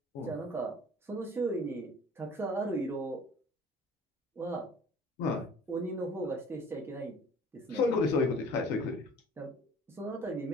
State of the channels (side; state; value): both; normal; correlation 0.48